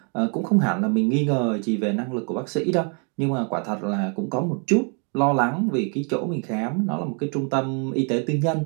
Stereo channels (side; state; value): left; quieter; 38.7 dB